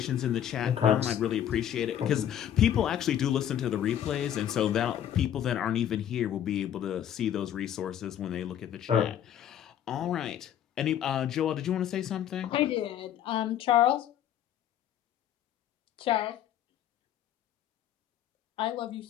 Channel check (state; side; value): quieter; right; 10.4 dB